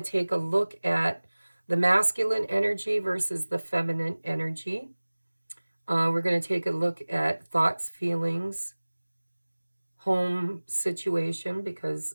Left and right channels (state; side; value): inverted; both; correlation -1.00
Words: to take a look at the masculine energy versus the feminine energy. We're going to take a look at thoughts, feelings, home situation, because